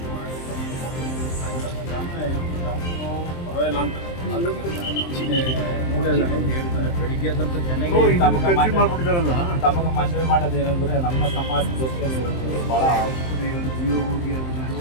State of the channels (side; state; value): right; late; 23 ms